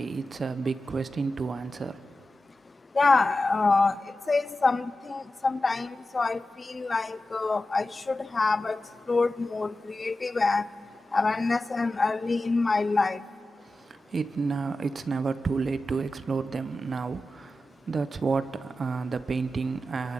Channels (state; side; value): normal; both; correlation 0.93